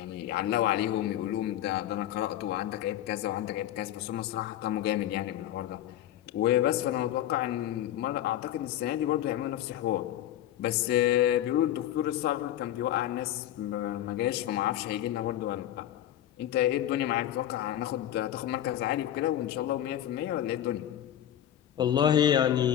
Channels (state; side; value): quieter; right; 12.1 dB